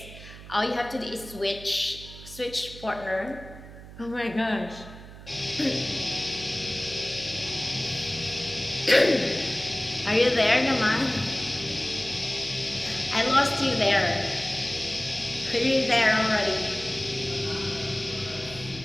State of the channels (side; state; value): right; noise; hum, 16 dB below the sound